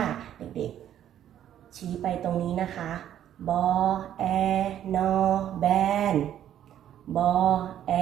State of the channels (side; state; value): left; quieter; 10.8 dB